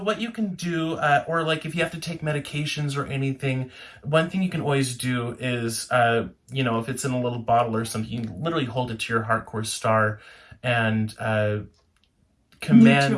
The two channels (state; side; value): identical; both; correlation 1.00